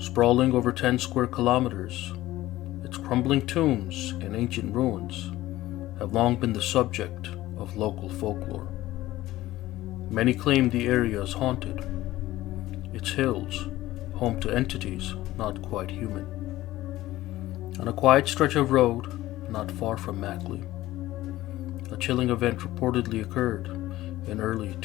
over 10 square kilometers, its crumbling tombs and ancient ruins have long been the subject of local folklore. Many claim the area is haunted, its hills home to entities not quite human. On a quiet stretch of road not far from Makli, a chilling event reportedly occurred in early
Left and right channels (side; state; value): right; quieter; 16.2 dB